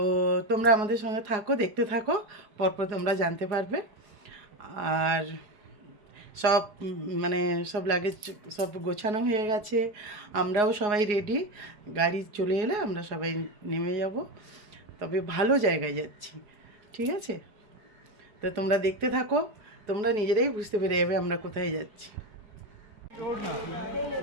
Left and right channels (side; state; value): left; late; 4.8 ms